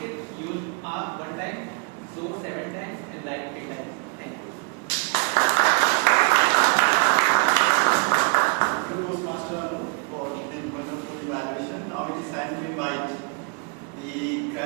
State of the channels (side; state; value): left; quieter; 34.5 dB